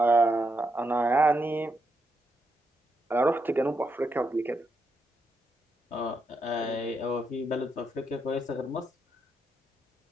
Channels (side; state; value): both; normal; correlation 0.82